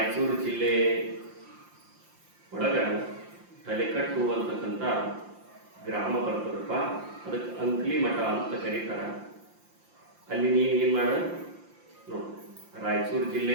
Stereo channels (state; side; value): late; left; 5.8 ms